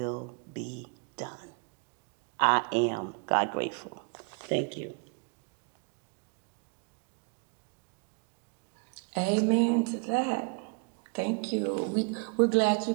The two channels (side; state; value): left; quieter; 37.3 dB